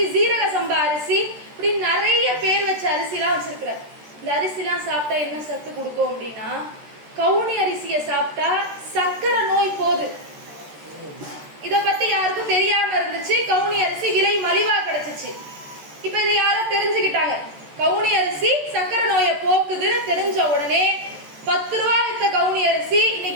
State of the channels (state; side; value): late; left; 13 ms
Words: சீரக சம்பா அரிசி, இப்படி நிறைய பேர் வச்ச அரிசி எல்லாம் வச்சிருக்கிறார். இந்த அரிசி எல்லாம் சாப்பிட்டா என்ன சத்து கொடுக்கும் அப்படின்னா, கவுனி அரிசியை சாப்பிட்டா சக்கரை நோய் போகுது. இத பத்தி யாருக்கும் தெரியாம இருந்துச்சு. கவுனி அரிசி விலை மலிவா கிடைச்சிச்சு. இப்ப இதை யாரோ தெரிஞ்சுக்கிட்டாங்க. கவுனி அரிசி சக்கரை நோயை போக்குதுன்னு தெரிஞ்ச உடனே 10 ரூபா வித்த கவுனி அரிசி